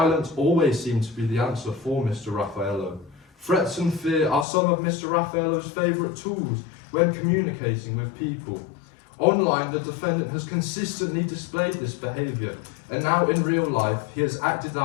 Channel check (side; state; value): right; drops out; at 4.5 s